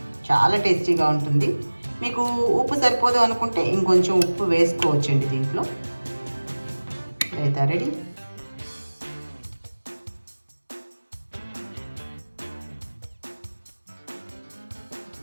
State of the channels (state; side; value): inverted; both; correlation -1.00